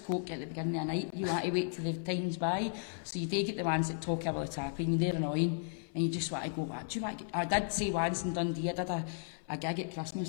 coke at the beginning of the night? You want to wait till the time's by. So you do get the ones that talk over the tap, and they're annoying, and you just want to go, what do you want to get? I did say once in Dundee, I did a gig at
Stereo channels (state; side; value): silent; right; 55 dB below the other